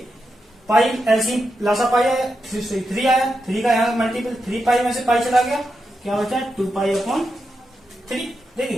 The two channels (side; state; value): both; normal; correlation 0.87